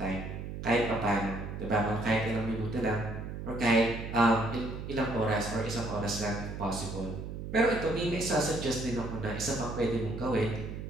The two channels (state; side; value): noise; right; hum, 7 dB below the sound